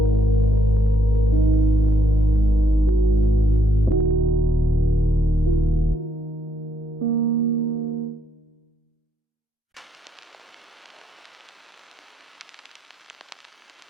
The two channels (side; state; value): both; normal; correlation 0.74